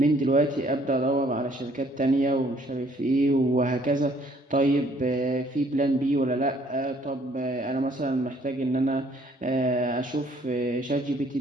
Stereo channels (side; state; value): both; normal; correlation 0.62